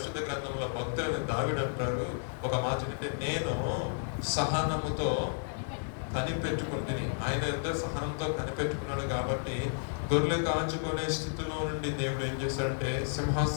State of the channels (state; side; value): silent; right; digital silence